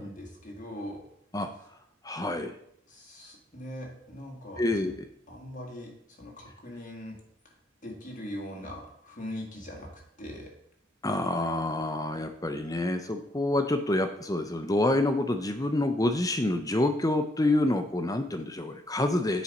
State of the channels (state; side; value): normal; both; correlation 0.71